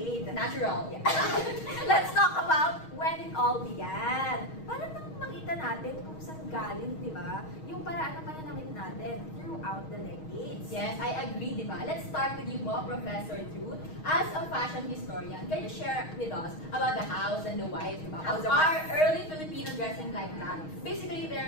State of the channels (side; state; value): right; late; 6.4 ms